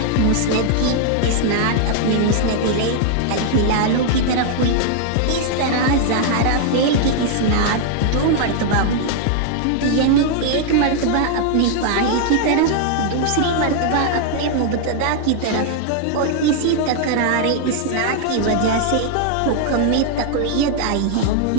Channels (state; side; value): different; both; correlation 0.00